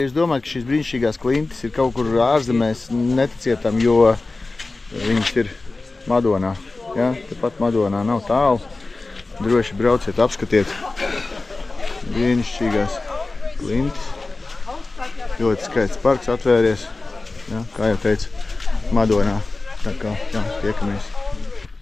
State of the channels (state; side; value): quieter; right; 3.4 dB